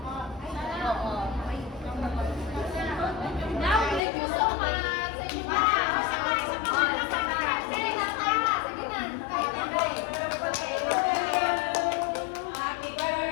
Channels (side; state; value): right; drops out; at 4.0 s